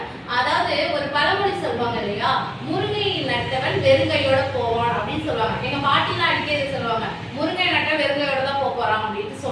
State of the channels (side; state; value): both; identical; correlation 1.00